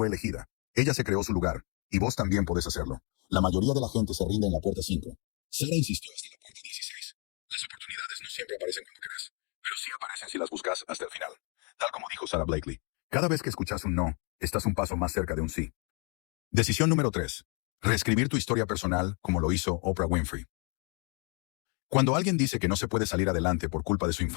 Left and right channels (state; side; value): quieter; right; 35.4 dB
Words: elegida. Ella se creó su lugar, y vos también podés hacerlo. La mayoría de la gente se rinde en la puerta 5. Sarah insistió hasta la puerta 16. Las oportunidades no siempre aparecen cuando querés, pero sí aparecen si las buscas hasta el final. Tal como dijo Sarah Blakely. Cada vez que escuchas un no, estás un paso más cerca de un sí. Decisión número 3. Reescribir tu historia personal como lo hizo Oprah Winfrey. Cuando alguien dice que no se puede salir adelante por culpa de su